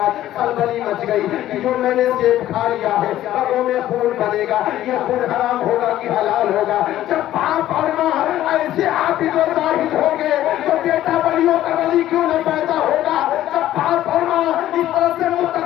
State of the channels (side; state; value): right; quieter; 13.4 dB